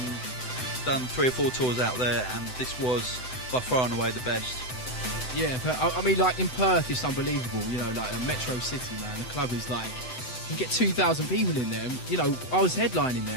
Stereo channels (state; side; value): late; right; 7.9 ms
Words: Done 3 or 4 tours out there, and this was by far and away the best. Yeah, but I mean, like, in Perth, it's unbelievable. You know, like a metro city, man. The club is like, you get 2,000 people in there. And, you know, I was headlining